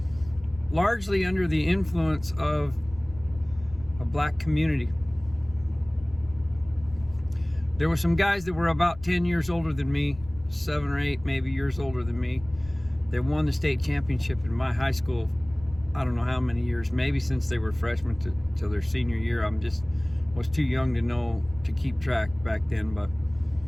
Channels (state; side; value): noise; left; rumble, 18 dB below the sound